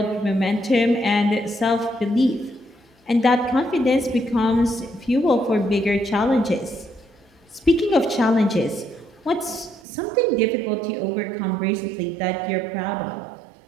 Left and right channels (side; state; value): left; drops out; at 9.8 s